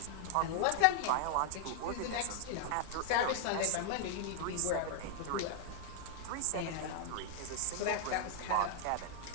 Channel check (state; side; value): different; both; correlation -0.01